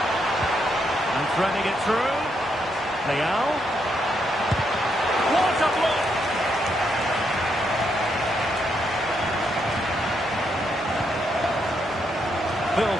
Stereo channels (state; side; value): normal; both; correlation 0.78